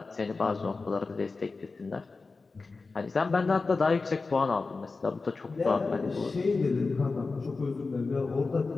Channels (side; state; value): right; quieter; 4.0 dB